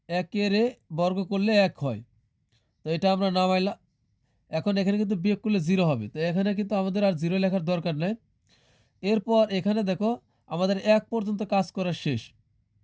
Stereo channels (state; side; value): identical; both; correlation 1.00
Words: 1-এর বর্গ করলে 1 হয়, তো এটা আমরা নামাইলাম। এখন এখানে কিন্তু বিয়োগ করলে 0 হবে, তো এখানে কিন্তু আমাদের আর 0 লেখার দরকার নেই। এরপর এখানে দেখো আমাদের 1 পর্যন্ত কাজ করা শেষ।